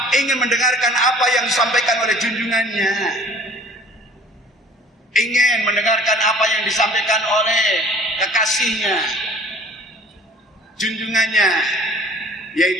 Ingin mendengarkan apa yang disampaikan oleh junjungannya. Ingin mendengarkan apa yang disampaikan oleh kekasihnya, junjungannya,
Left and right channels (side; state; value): both; normal; correlation 0.50